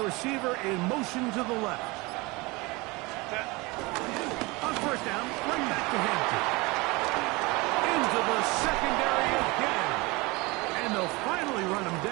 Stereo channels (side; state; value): left; quieter; 24.5 dB